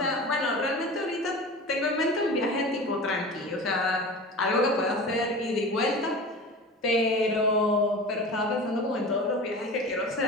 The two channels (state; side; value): normal; both; correlation 0.34